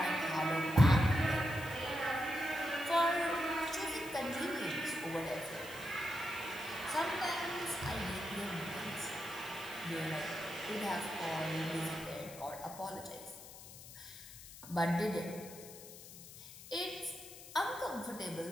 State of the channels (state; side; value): noise; left; hiss, 15 dB below the sound